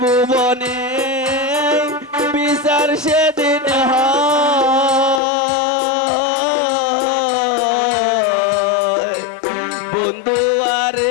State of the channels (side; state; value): right; drops out; at 5.2 s